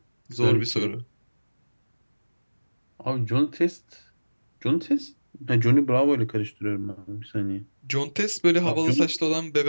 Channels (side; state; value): both; inverted; correlation -1.00